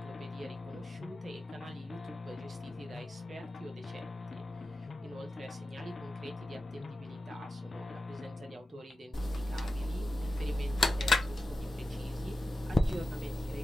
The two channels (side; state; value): both; normal; correlation 0.92